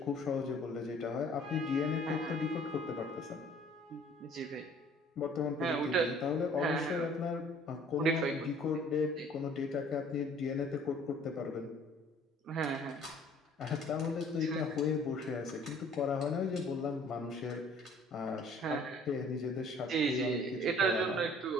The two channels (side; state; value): both; normal; correlation 0.54